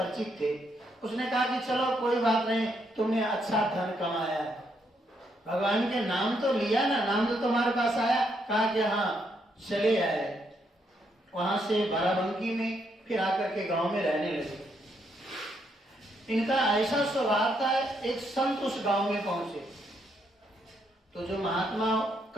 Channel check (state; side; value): normal; both; correlation 0.76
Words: थे। उसने कहा कि चलो कोई बात नहीं, तुमने अच्छा धन कमाया, भगवान के नाम तो लिया ना, नाम तो तुम्हारे पास आया। कहा कि हाँ चले आए। वहां से बाराबंकी में फिर आकर के गांव में रहने लगे। इनका ऐसा स्वभाव था, एक संत उस गांव में पहुंचे तो जो महात्मा